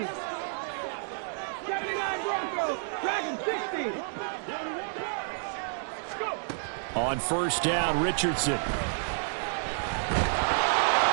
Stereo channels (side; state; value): left; silent; digital silence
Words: 79 Broncos. Dragon 60. Go. On first down, Richardson.